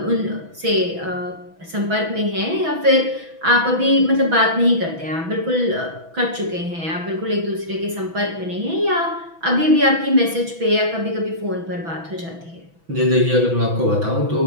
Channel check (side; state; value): left; late; 6.0 ms